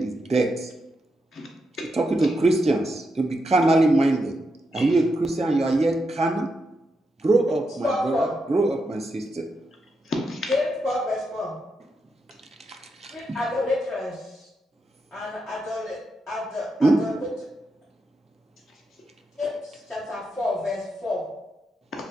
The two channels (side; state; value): both; normal; correlation 0.84